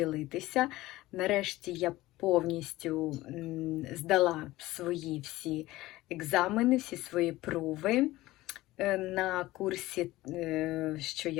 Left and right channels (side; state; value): right; quieter; 17.7 dB